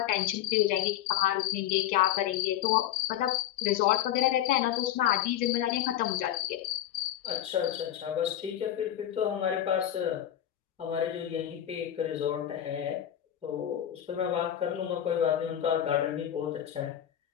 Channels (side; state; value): right; quieter; 11.5 dB